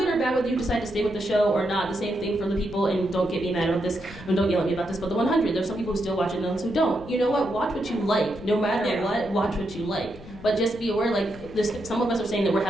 or bad whether you decide to stay with the show or not. The same thing for the people, and don't get me mad about this, and don't yell at me about this, but the 100, there's some people who still watch it and those who don't. You know what? Watch what you like. No matter what, watch what you like. But just be aware, like, some of us are saying that we're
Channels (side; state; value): left; noise; rumble, 17 dB below the sound